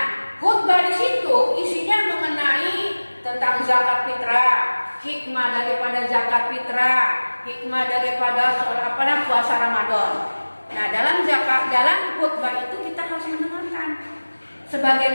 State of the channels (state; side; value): inverted; both; correlation -1.00